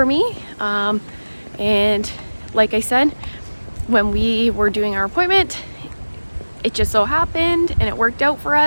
me, and like I said, when we were doing our appointment, it just so happened and it worked out for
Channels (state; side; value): inverted; both; correlation -1.00